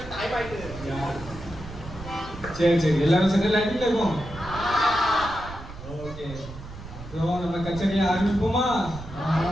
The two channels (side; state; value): right; noise; rumble, 13 dB below the sound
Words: சரி சரி, எல்லாரும் செட்டில் ஆகிட்டு இருக்கோம். ஓகே, நம்ம கச்சேரியை ஆரம்பிப்போமா?